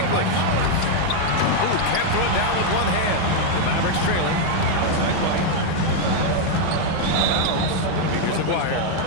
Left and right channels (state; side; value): different; both; correlation 0.00